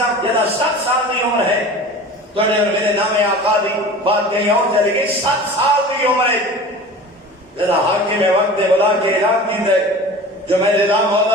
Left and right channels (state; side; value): normal; both; correlation 0.38